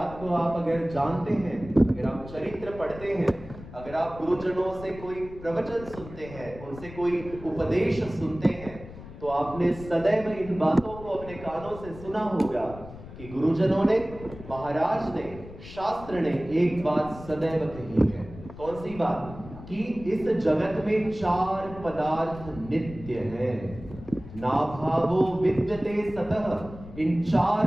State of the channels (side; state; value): left; noise; rumble, 15 dB below the sound